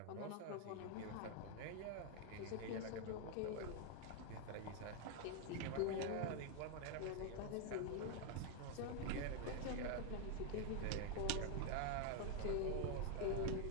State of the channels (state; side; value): different; both; correlation 0.00